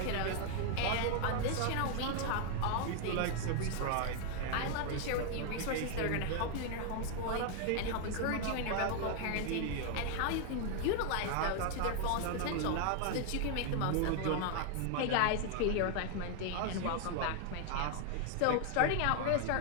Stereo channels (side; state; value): both; different; correlation 0.00